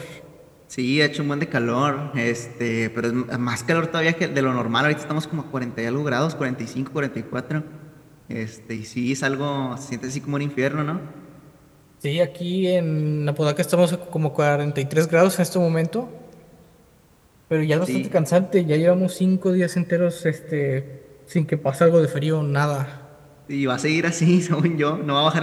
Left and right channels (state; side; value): identical; both; correlation 1.00